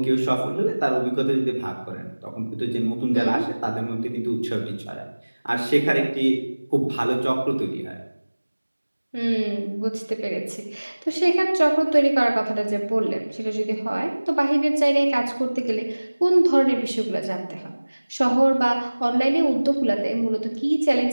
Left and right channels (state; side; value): inverted; both; correlation -1.00